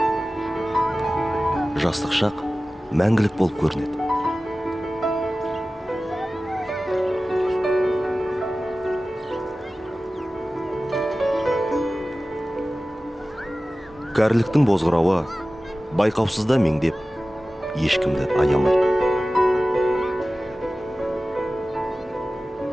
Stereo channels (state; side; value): normal; both; correlation 0.96